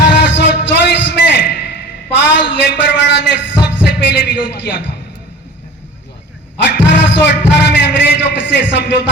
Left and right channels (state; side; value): normal; both; correlation 0.40